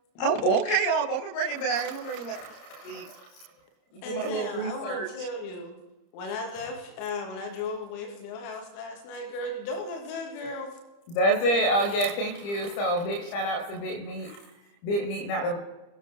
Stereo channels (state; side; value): late; right; 30 ms